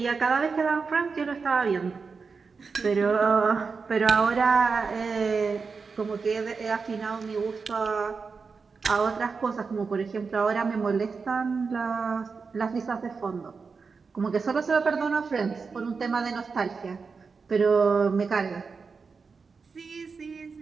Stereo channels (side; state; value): left; quieter; 5.0 dB